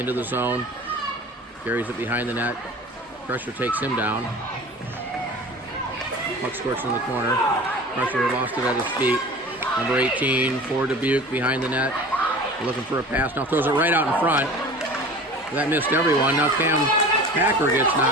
the zone. Carries it behind the net. Crusher takes him down. Puck squirts in the corner. Pressure lost it at his feet. Number 18 for Dubuque behind the net. Looking for a pass. Now throws it right out in front. That missed everyone. Now Cam Packer gets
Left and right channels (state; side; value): normal; both; correlation 0.39